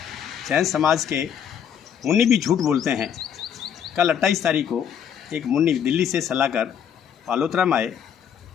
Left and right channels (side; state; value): right; quieter; 8.4 dB